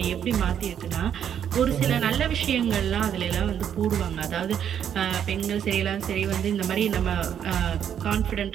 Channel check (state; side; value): quieter; left; 9.0 dB